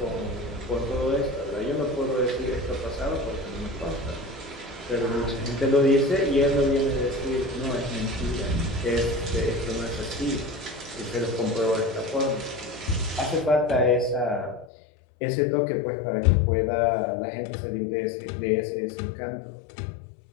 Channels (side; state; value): right; drops out; at 14.7 s